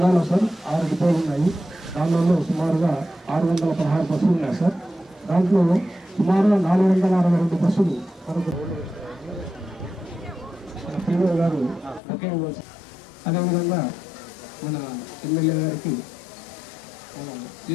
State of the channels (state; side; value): drops out; right; at 12.0 s